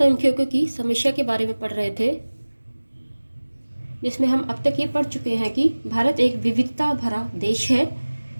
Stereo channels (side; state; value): both; inverted; correlation -1.00